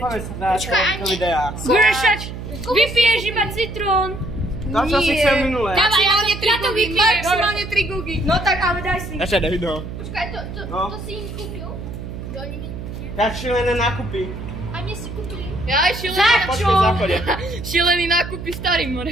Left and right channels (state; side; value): noise; right; hum, 9 dB below the sound